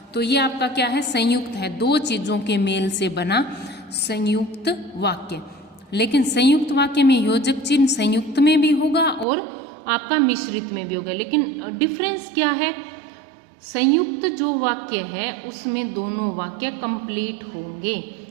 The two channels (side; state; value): left; drops out; at 9.2 s